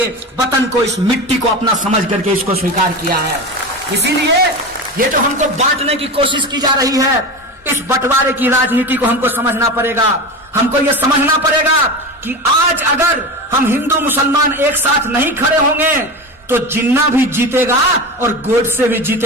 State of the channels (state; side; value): normal; both; correlation 0.25